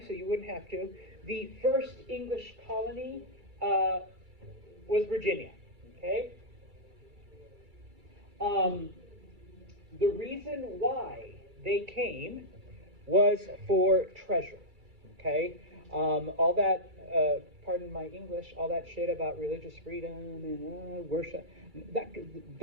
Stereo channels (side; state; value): left; late; 2.3 ms